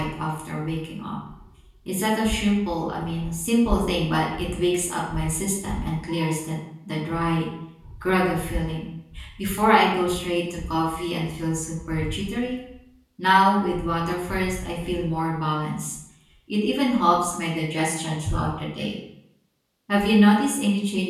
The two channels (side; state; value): both; identical; correlation 1.00